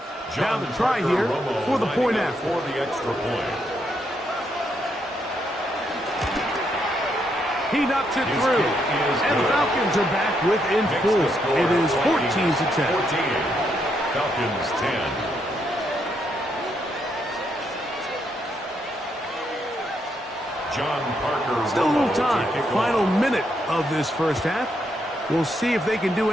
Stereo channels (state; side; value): normal; both; correlation 0.77